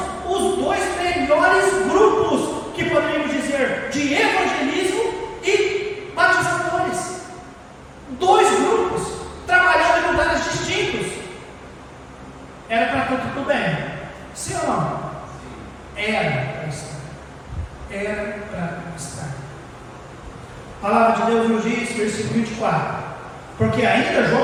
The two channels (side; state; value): both; identical; correlation 1.00